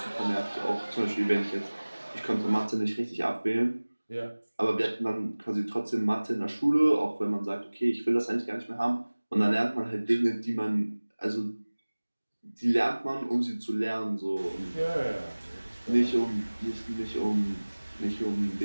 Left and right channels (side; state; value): both; inverted; correlation -1.00